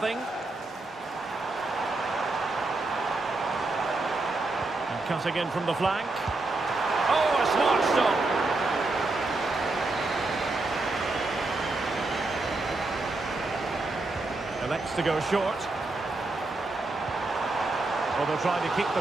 And cutting in from the flank. Oh, a smart stop. Elects to go short. Well, they'll try to keep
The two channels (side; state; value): left; quieter; 3.2 dB